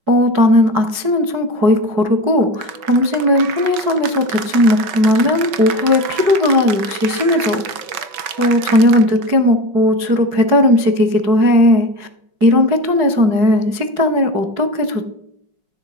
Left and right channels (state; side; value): late; left; 5.3 ms